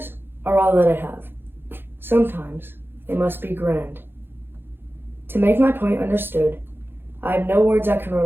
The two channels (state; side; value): late; left; 0.10 ms